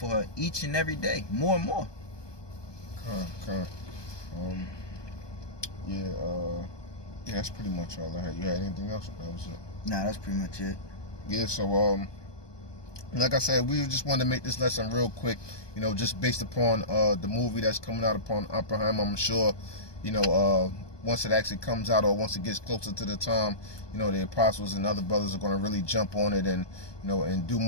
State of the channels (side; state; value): right; late; 1.2 ms